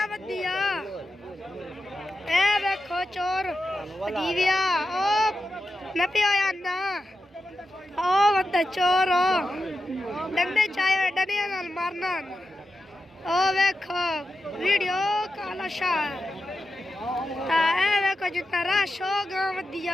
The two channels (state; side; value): normal; both; correlation 0.90